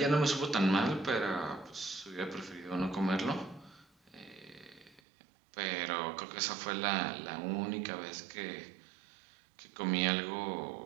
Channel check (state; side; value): drops out; left; at 5.0 s